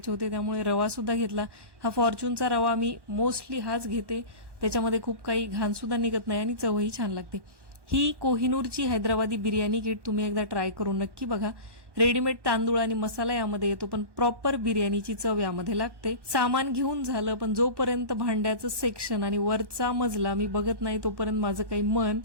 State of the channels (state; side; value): late; left; 1.1 ms